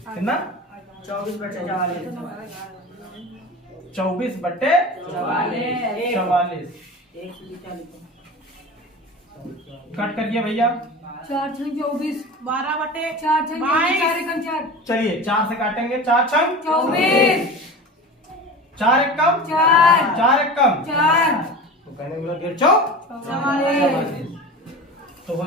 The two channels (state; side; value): normal; both; correlation 0.32